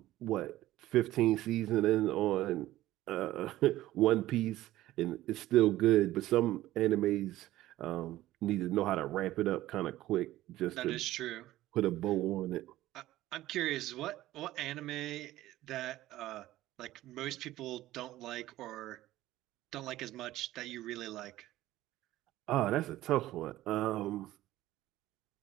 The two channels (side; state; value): left; quieter; 15.5 dB